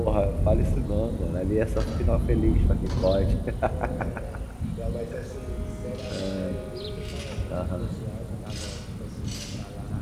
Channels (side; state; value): both; identical; correlation 1.00